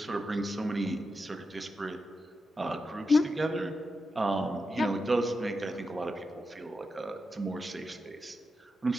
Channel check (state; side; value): normal; both; correlation 0.88